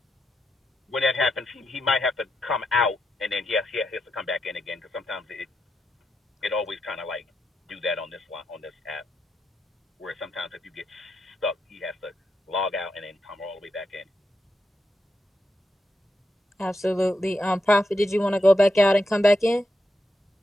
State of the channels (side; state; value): both; normal; correlation 0.84